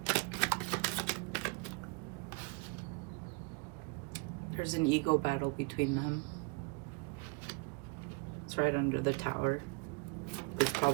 There's an ego battle between them. It's right under the Tower. That's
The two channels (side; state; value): left; quieter; 30.8 dB